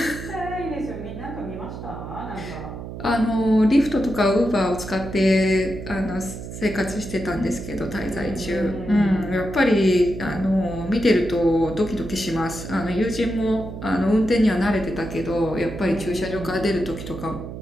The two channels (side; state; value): right; noise; hum, 9 dB below the sound